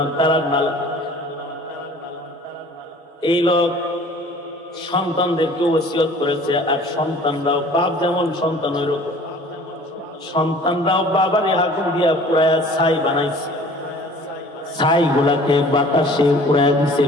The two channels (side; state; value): both; normal; correlation 0.48